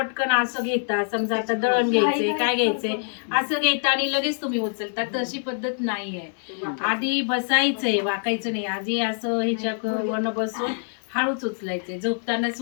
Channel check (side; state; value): right; silent; 62 dB below the other